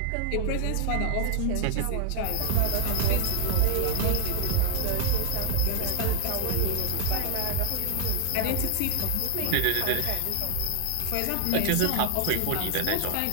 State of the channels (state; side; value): different; both; correlation 0.00